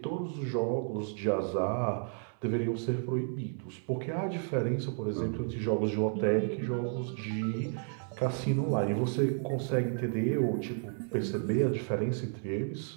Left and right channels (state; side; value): silent; left; 56 dB below the other